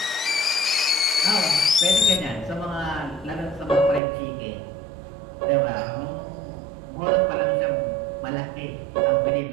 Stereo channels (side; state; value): left; drops out; at 4.0 s